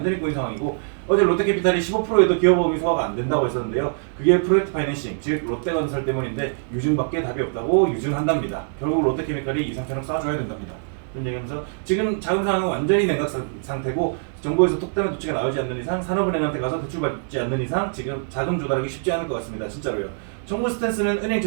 꼬인 상황이고 어제 롯데캐피탈이 15%에도 기업보험이 소화가 안 된다고 했었는데요. 그게 프로젝트 파이낸싱, 즉 롯데건설 때문인데 유증밖에 답이 없다고 유증한답니다. 결국 롯데케미칼이 이 상처럼 쏴줘야 된답니다. 그런 얘기하면서 지금 자금 상황은 완전히 냉각 상태고 정부에서 특단의 조치가 나오지 않는 이상 산업은행한테 가서 대출받지 않는 이상 지금 자금 조달하기 쉽지 않을 것 같습니다. 진짜로요. 정부 스탠스는 은행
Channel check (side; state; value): left; silent; digital silence